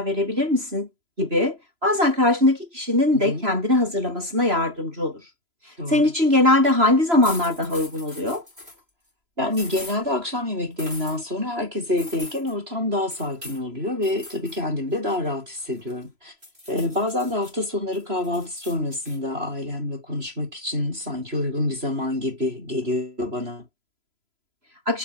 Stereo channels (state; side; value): late; left; 3.0 ms